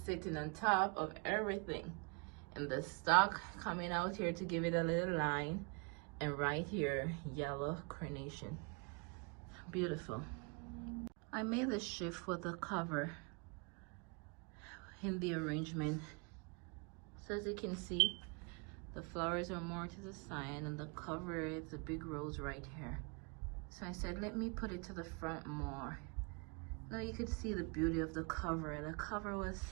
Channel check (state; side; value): quieter; left; 33.5 dB